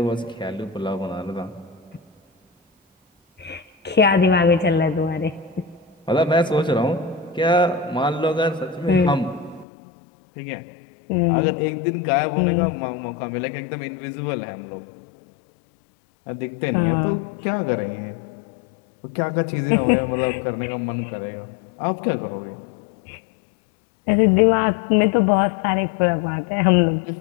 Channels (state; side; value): drops out; right; at 9.7 s